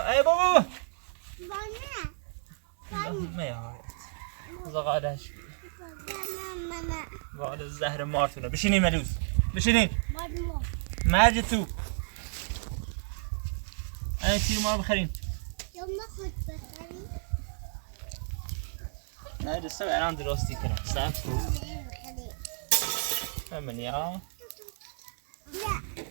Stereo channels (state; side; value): silent; left; 57 dB below the other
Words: بابا ما یا زغالش وال زهر مارتونه بشینین ملوس بشینین مرج تو این تیر ما رو بخرین نه دسته الان درستی کنم صبر کن همینی ها